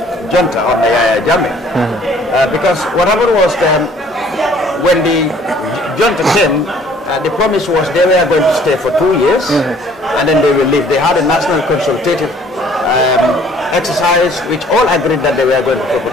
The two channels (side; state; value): both; normal; correlation 0.57